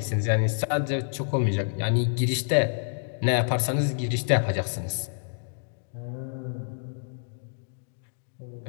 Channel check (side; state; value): right; silent; digital silence